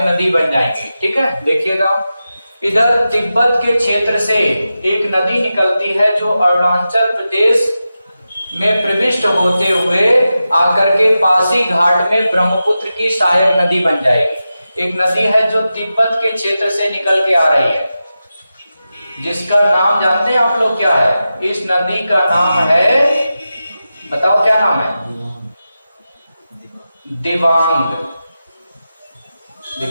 नदी बन जाएंगी। ठीक है, देखिएगा इधर तिब्बत के क्षेत्र से एक नदी निकलती है जो अरुणाचल प्रदेश में प्रविष्ट होते हुए आकर के पासी घाट में ब्रह्मपुत्र की सहायक नदी बन जाएगी। एक नदी है जो तिब्बत के क्षेत्र से निकल के आ रही है, जिसका नाम जानते हैं आप लोग क्या है? इस नदी का नाम है, बताओ क्या नाम है? दिबांग।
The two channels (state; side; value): inverted; both; correlation -0.92